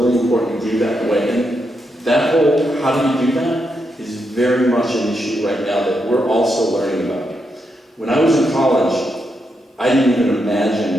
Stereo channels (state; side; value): normal; both; correlation 0.82